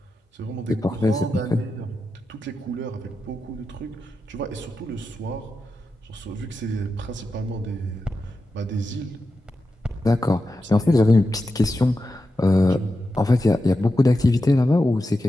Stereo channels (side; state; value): both; normal; correlation 0.90